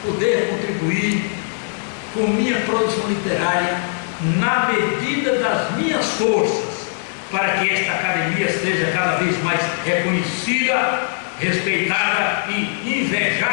poder contribuir com minha produção literária na medida das minhas forças, para que esta academia seja cada vez mais reconhecida, respeitada e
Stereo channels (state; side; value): silent; right; digital silence